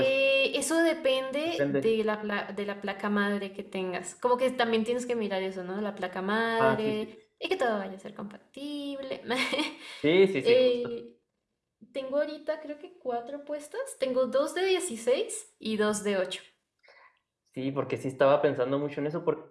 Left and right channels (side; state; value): both; identical; correlation 1.00